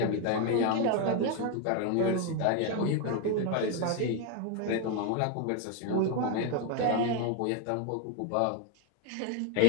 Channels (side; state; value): both; different; correlation 0.01